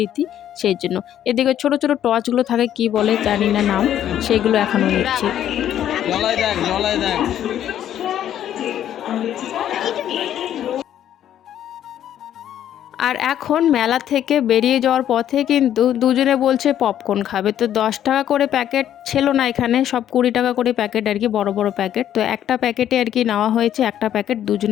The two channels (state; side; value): quieter; right; 10.9 dB